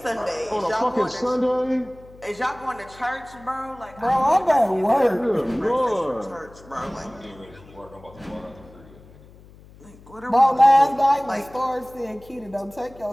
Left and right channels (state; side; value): noise; left; hum, 23 dB below the sound